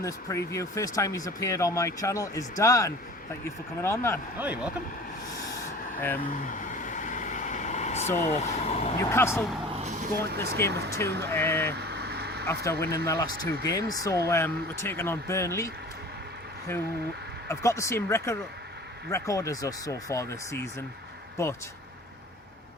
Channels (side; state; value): both; normal; correlation 0.42